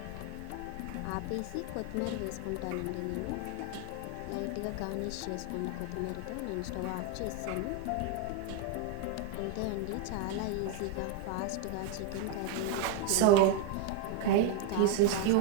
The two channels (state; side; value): different; both; correlation 0.01